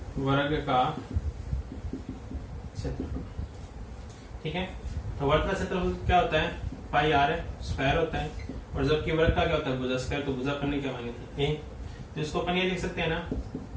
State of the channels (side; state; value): both; identical; correlation 1.00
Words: वर्ग का क्षेत्रफल। ठीक है, तो वर्ग का क्षेत्रफल क्या होता है? पाई आर है, स्क्वायर होता है, और जबकि वर्ग का क्या होता है? भुजा स्क्वायर। तो भुजा करने क्या मानी थी? a। तो इसको अपन ये लिख सकते हैं ना